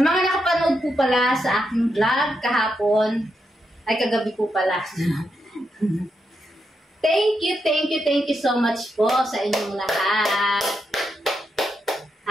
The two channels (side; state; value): both; normal; correlation 0.83